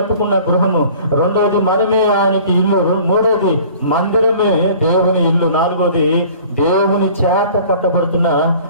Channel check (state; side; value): inverted; both; correlation -0.48